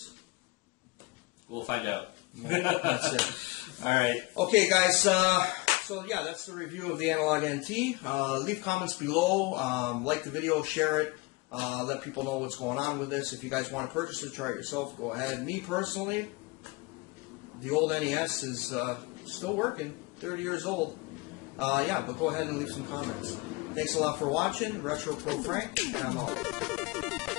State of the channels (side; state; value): right; quieter; 24.2 dB